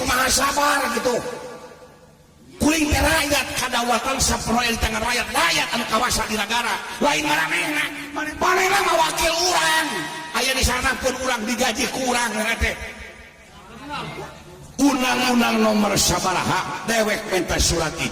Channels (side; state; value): both; identical; correlation 1.00